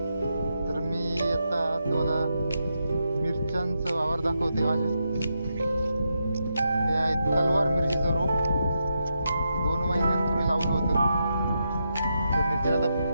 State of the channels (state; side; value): inverted; both; correlation -0.84